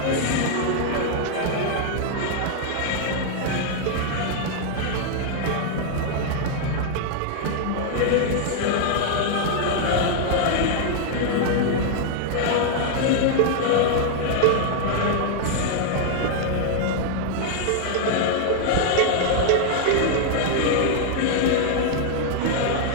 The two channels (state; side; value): different; both; correlation 0.00